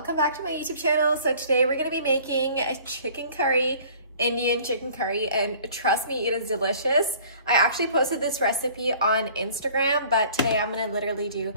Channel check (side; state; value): both; inverted; correlation -0.51